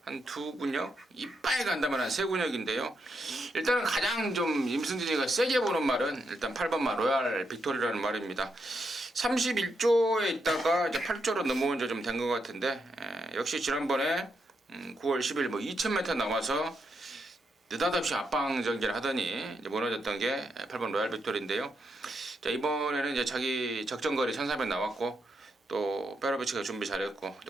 한 2근육, 이빨 간다면 한 3근육인데요. 일단은 가장 좀 임승진이가 세게 보는 말은 일단 8번마 로얄 빅토리라는 말입니다. 31조에 있다가 이제 8조로 넘어온 지 좀 된 것 같은데 역시 지난번에 9월 10일 뭐 2000m 나와서 느닷없이 압박 전개를 하더니 이제 무너졌던 게 8번 로얄 빅토리인데요. 자, 이번에는 이제 자기 적정거리 1400 나왔고 또 페라비치가 준비 잘했고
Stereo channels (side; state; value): both; normal; correlation 0.81